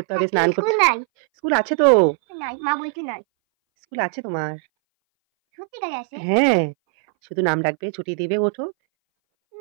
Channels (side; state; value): left; silent; 62 dB below the other